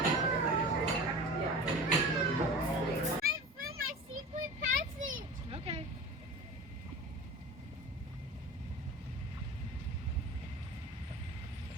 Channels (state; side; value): normal; both; correlation 0.35